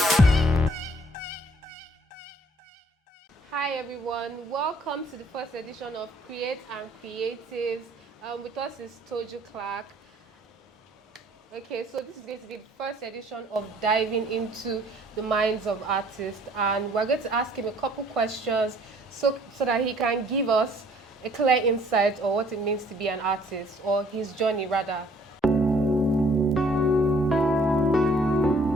everyone, welcome to the first edition of Creath Creatives. With us is Toju Clarke. Okay, so this is going to be the first edition of diving into the minds of artists, and we're going to ask him a couple questions so that he can give us a clear insight on what it means to be an artist, or his journey rather.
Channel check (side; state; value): both; normal; correlation 0.59